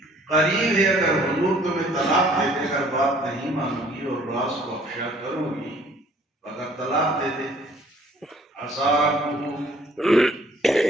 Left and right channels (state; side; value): normal; both; correlation 0.57